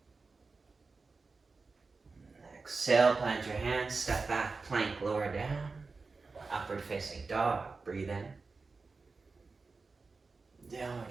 Exhale, plant your hands, step back, plank, lower down. Upward facing dog, breathe in.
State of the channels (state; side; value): quieter; left; 4.1 dB